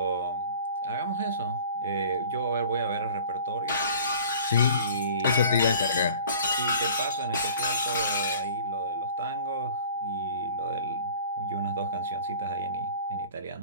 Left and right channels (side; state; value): both; inverted; correlation -0.45